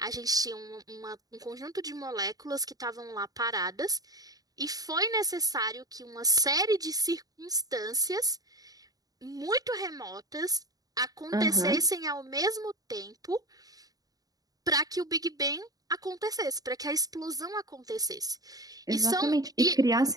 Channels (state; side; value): late; left; 0.18 ms